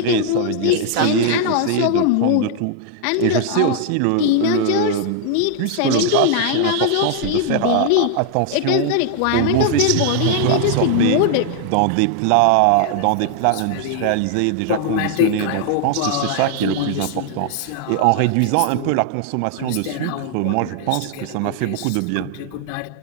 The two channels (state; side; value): different; both; correlation 0.00